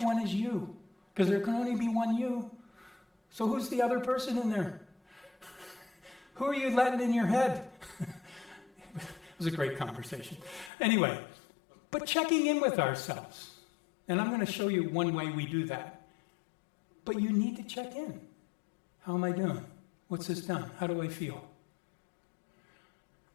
one is you? Because there can only be one you. So who's the other person in there? Who are you letting in your head?" It was a great conversation. Anyway, but checking in with ourselves. And I'm going to show you one way we do that. But you need to check in. How am I doing? What's this done? How do I feel?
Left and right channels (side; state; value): right; drops out; at 10.7 s